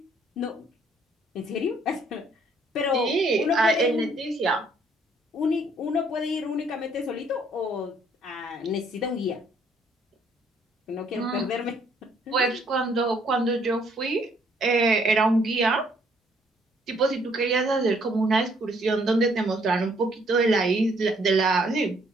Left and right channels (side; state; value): both; normal; correlation 0.65